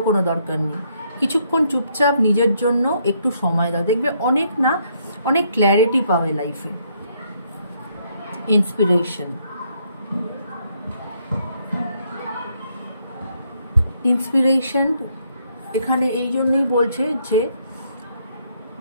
কোনো দরকার নেই। কিছুক্ষণ চুপচাপ নিজের জন্য একটু সময় দাও, দেখবে অনেক না অনেক ক্ল্যারিটি পাবে লাইফে। ইন্সপিরেশন, ইন্সপিরেশন এখানে এই জন্যই বলছে যে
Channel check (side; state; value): both; inverted; correlation -0.72